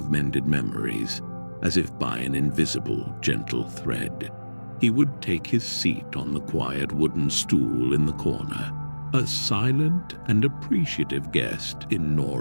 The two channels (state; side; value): inverted; both; correlation -1.00